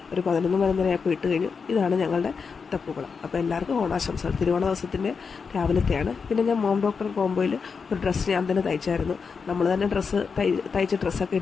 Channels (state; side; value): quieter; right; 5.5 dB